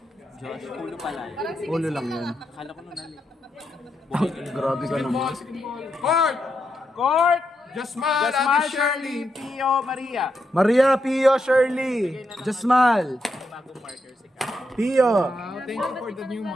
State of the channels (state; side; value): normal; both; correlation 0.82